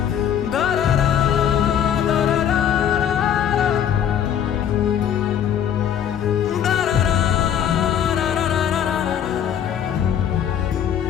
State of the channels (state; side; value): quieter; right; 9.2 dB